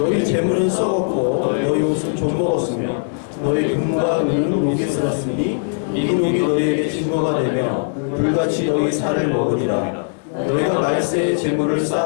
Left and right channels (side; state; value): right; silent; 66 dB below the other